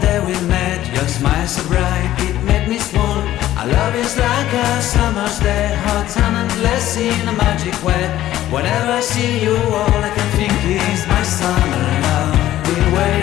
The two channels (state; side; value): quieter; right; 13.7 dB